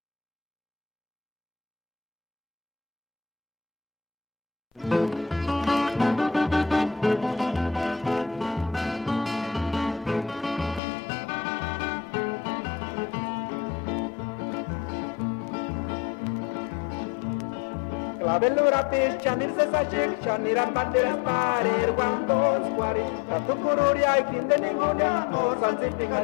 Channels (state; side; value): drops out; right; at 10.8 s